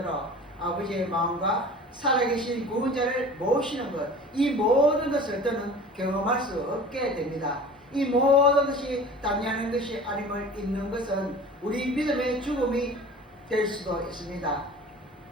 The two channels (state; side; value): normal; both; correlation 0.40